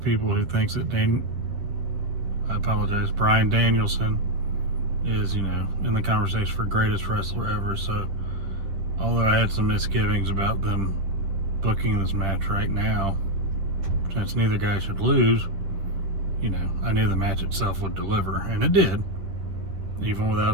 who thinks that Bryan Danielson is, in the conversation for greatest wrestler ever. So, although I had some misgivings about them booking this match right now, since neither guy should lose, I knew the match itself would deliver, and it did, even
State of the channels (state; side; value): late; left; 10 ms